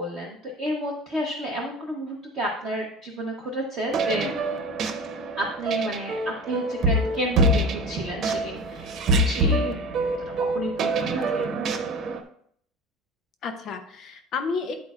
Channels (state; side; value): normal; both; correlation 0.34